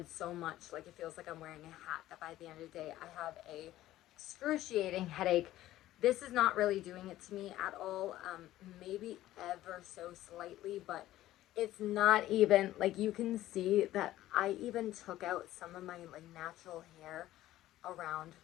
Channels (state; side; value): quieter; right; 14.6 dB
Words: so much, like it feels like I'm wearing a hat, that by the end of the day I have a excruciating headache. This is not really doing it to me at all. Maybe ever so slightly, but it's not even, like you can see that I even took out some of my like natural hair around